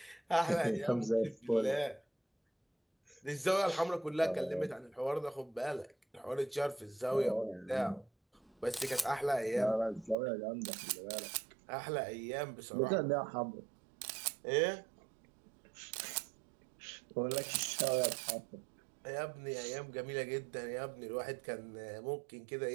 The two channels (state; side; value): drops out; left; at 10.2 s